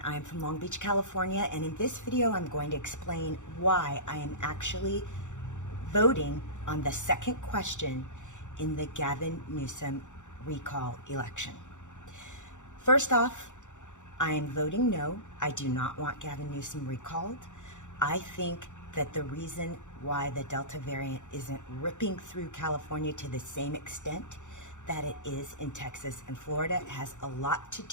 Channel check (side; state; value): right; late; 0.85 ms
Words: I'm from Long Beach, California, and in this video I'm going to explain why I am actually voting on the second question in the Gavin Newsom recall election. First off, I am voting no. I do not want Gavin Newsom recalled. I think that the reason why the Delta variant isn't ripping through California to the same extent that it is in Texas and Florida has a lot to